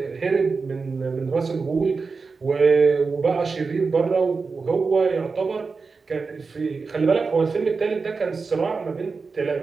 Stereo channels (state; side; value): quieter; left; 4.5 dB